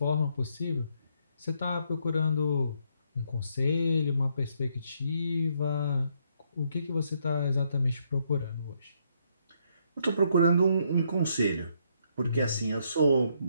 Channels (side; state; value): both; inverted; correlation -0.73